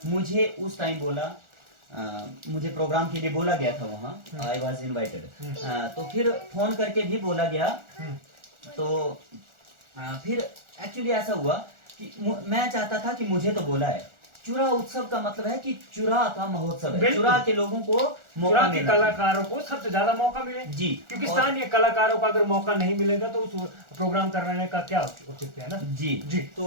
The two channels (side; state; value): left; late; 1.4 ms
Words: मुझे उस टाइम बोला, मुझे प्रोग्राम के लिए बोला गया था वहाँ, आई वॉज इन्वाइटेड, तो फिर फोन करके भी बोला गया। तो फिर एक्चुअली ऐसा हुआ कि मैं चाहता था कि मुझे तो बोला है, चुरा उत्सव का मतलब है कि चुरा का महोत्सव है, चुरा के लोगों को मौका मिले, कलाकारों को सबसे ज्यादा मौका मिले जी, क्योंकि स्थानीय कलाकारों को अगर मौका नहीं मिलेगा तो उस प्रोग्राम करने का क्या उचित है ना? जी जी।